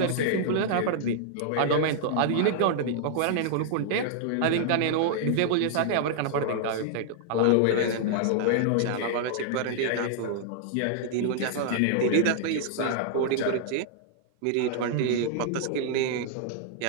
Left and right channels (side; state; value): both; different; correlation -0.01